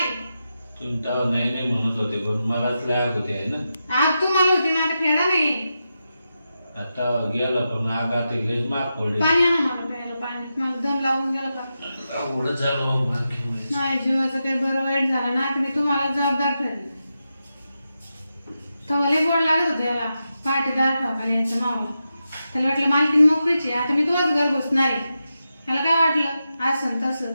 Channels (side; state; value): both; inverted; correlation -0.89